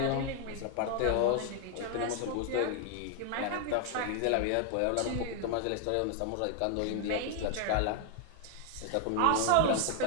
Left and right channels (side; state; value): both; different; correlation 0.00